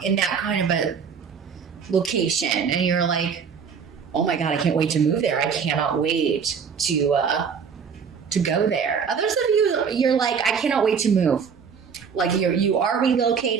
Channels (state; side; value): quieter; left; 6.4 dB